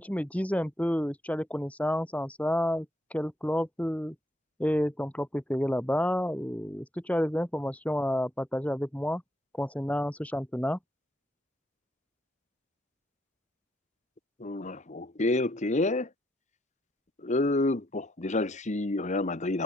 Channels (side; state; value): both; normal; correlation 0.76